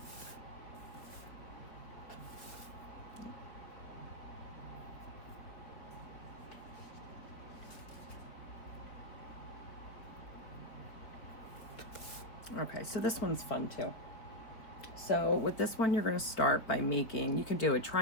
okay, so this one's fun too. So with this one, you're going to start by making, you can do a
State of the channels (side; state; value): right; late; 4.5 ms